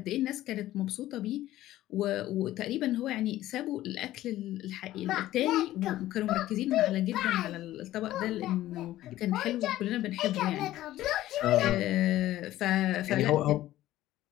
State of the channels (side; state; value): right; quieter; 14.7 dB